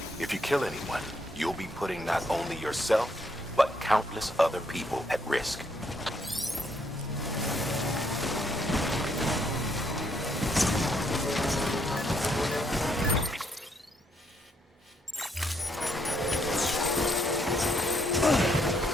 If you kill anyone, you'll be putting not only yourself, but countless other people at risk.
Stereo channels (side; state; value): both; normal; correlation 0.73